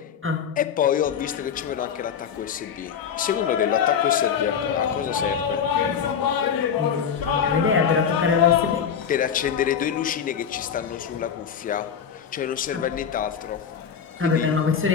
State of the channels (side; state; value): right; quieter; 7.6 dB